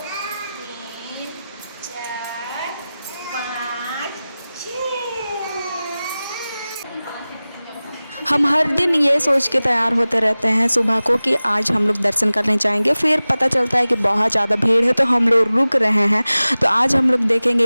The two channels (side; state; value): both; inverted; correlation -0.97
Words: हम हर दिन ये सोच के तैयार होते रहते हैं सुबह को कि आज हम लोग दर्शन करने जाएंगे। फिर पता चलता है कि बहुत ज़्यादा भीड़ है, तो हम लोग रुक रहे हैं। तो आज हम लोग